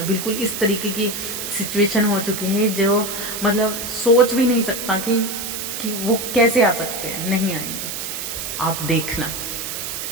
बिल्कुल इस तरीके की सिचुएशन हो चुकी है जो मतलब सोच भी नहीं सकता कि वो कैसे आ सकते हैं, नहीं आएंगे। आप देखना,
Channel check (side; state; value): right; noise; hiss, 5 dB below the sound